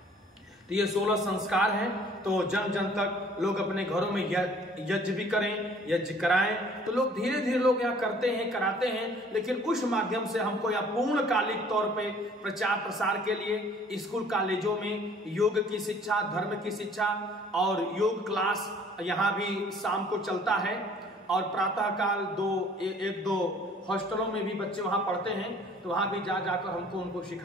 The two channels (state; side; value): normal; both; correlation 0.55